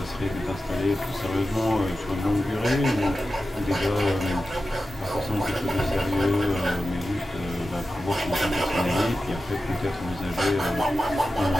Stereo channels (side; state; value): both; normal; correlation 0.92